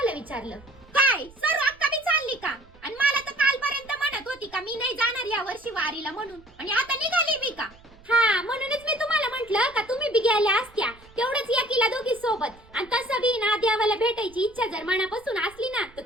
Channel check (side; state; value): right; noise; rumble, 25 dB below the sound